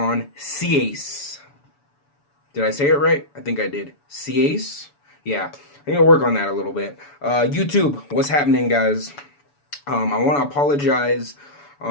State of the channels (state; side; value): late; right; 7.0 ms